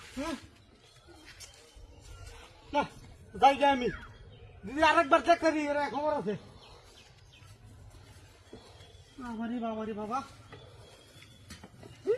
না যাই যাই আমি দিদি আরেকবার চেক করি এরা খবর আছে বাবারে বাবারে বাবা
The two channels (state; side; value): identical; both; correlation 1.00